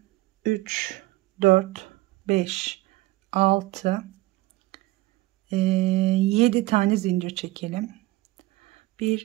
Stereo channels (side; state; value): left; quieter; 19.0 dB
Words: 3, 4, 5, 6, 7 tane zincir çekelim.